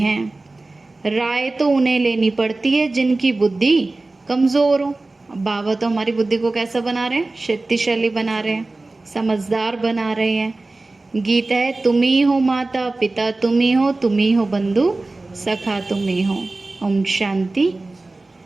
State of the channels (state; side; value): quieter; left; 3.2 dB